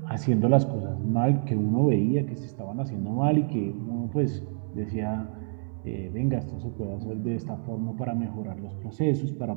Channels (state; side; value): silent; left; 59 dB below the other